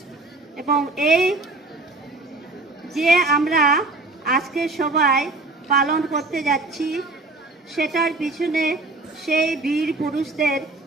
এবং এই যে আমরা আজকে সবাই পালন করতে যাচ্ছি, সেটার পিছনে সেই বীর পুরুষদের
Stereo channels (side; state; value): left; quieter; 3.2 dB